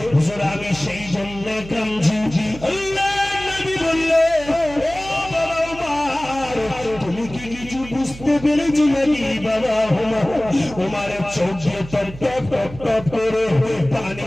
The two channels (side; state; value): right; noise; hum, 15 dB below the sound